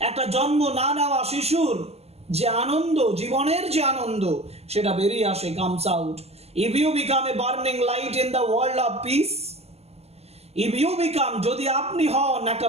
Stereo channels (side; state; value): left; late; 0.30 ms